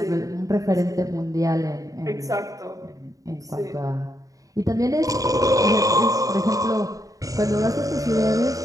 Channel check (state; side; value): late; left; 0.16 ms